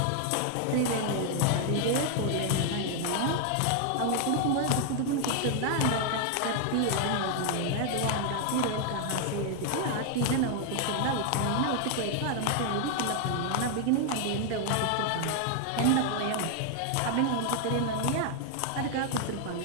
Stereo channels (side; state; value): both; different; correlation 0.00